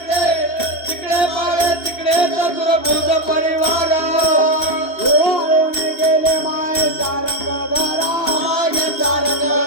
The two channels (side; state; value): right; late; 2.8 ms